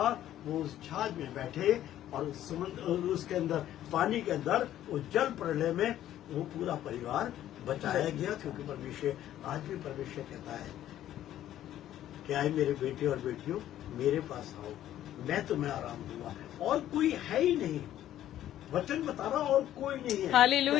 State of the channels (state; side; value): quieter; right; 12.3 dB